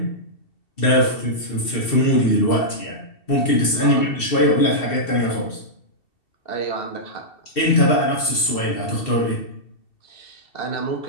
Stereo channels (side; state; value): right; late; 2.7 ms